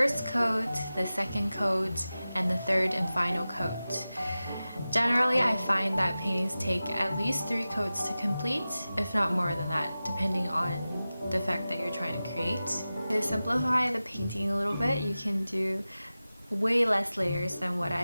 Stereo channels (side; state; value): both; inverted; correlation -0.95